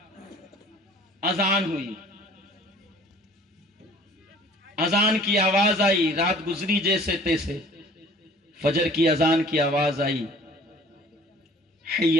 اذان ہوئی، اذان کی آواز آئی، رات گزری جیسے تیسے، فجر کی اذان کی آواز آئی،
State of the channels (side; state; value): both; normal; correlation 0.50